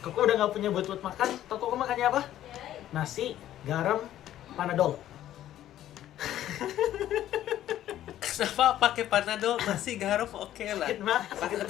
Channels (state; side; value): quieter; right; 12.5 dB